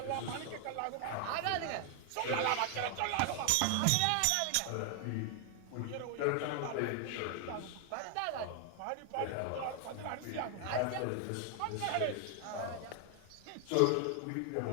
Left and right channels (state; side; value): different; both; correlation 0.00